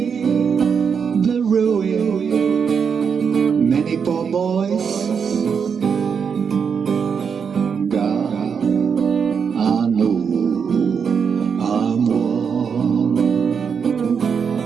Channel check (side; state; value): left; quieter; 6.5 dB